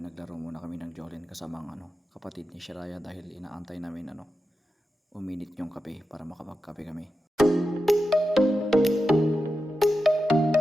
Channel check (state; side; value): normal; both; correlation 0.91